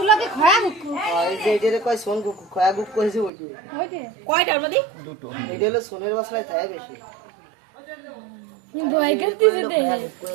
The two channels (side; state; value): left; drops out; at 3.3 s